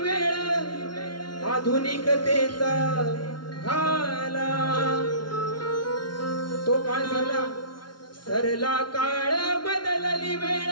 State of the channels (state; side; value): late; right; 0.71 ms